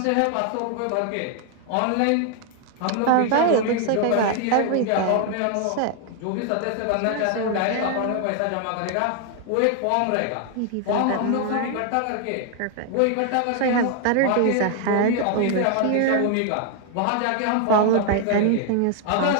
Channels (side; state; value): both; different; correlation 0.00